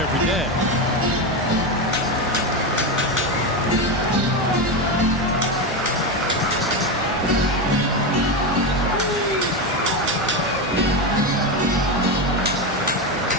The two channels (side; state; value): both; normal; correlation 0.13